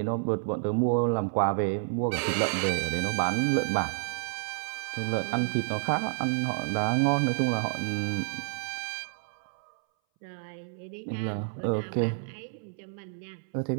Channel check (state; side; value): silent; left; 58 dB below the other